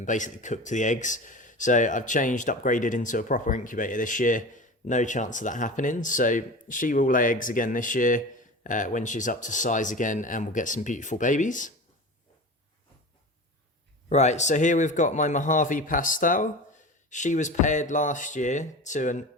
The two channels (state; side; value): normal; both; correlation 0.32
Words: basically cooked the eggs. So I've upgraded into a proper incubator this year. No chance of that happening. So she will lay eggs again this year when she's up to size again, and we'll get some beautiful babies. Right, so here we've got my Mojave Pastel. She was paired last year to an